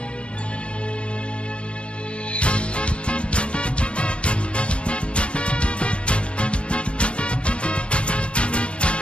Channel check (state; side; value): late; right; 0.059 ms